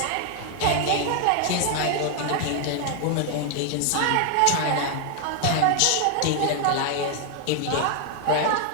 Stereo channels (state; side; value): different; both; correlation 0.00